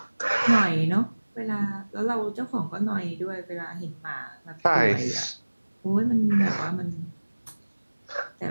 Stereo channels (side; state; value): both; inverted; correlation -1.00